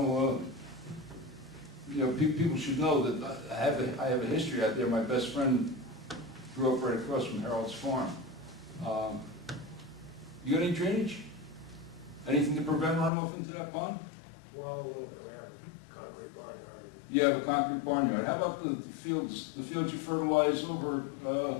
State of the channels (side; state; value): right; drops out; at 13.1 s